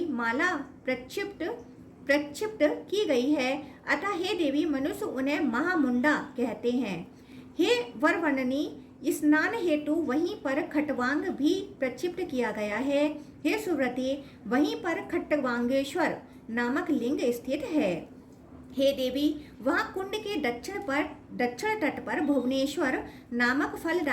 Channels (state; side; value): identical; both; correlation 1.00